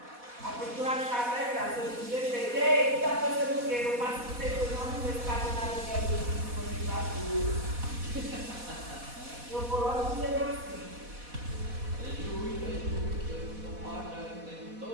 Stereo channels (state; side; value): late; left; 4.1 ms